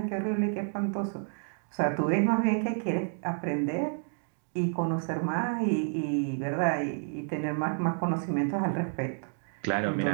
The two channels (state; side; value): silent; left; 58 dB below the other